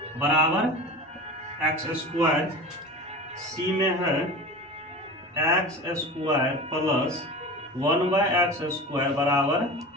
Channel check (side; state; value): both; normal; correlation 0.32